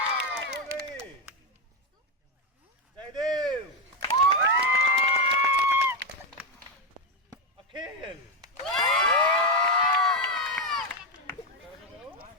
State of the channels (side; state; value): both; normal; correlation 0.06